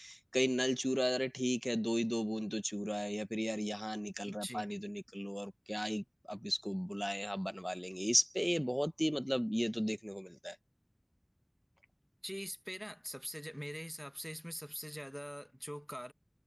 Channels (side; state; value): both; identical; correlation 1.00